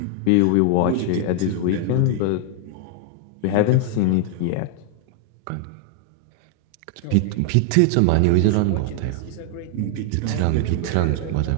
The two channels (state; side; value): different; both; correlation 0.00